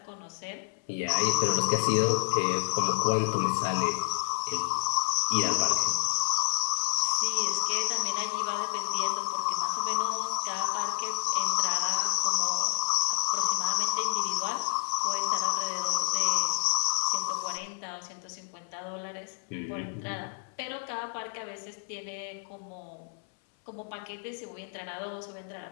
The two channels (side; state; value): right; silent; 58 dB below the other